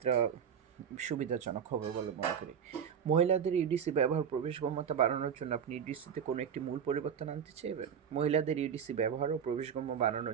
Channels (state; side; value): quieter; left; 7.8 dB